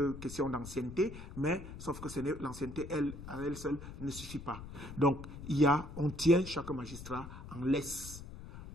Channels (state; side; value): noise; left; rumble, 12 dB below the sound